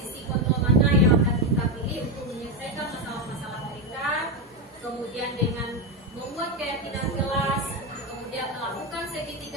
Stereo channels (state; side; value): normal; both; correlation 0.11